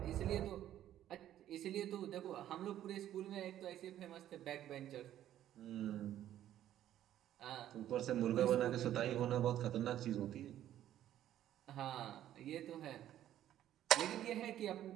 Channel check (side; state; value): left; quieter; 12.0 dB